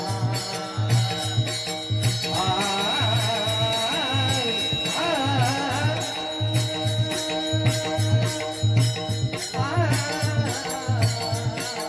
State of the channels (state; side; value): identical; both; correlation 1.00